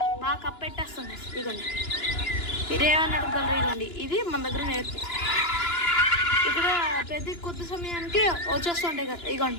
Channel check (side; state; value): right; late; 2.9 ms